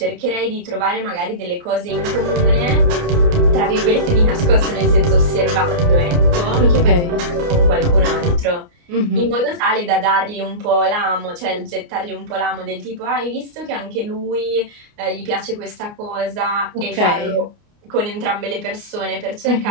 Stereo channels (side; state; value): left; late; 29 ms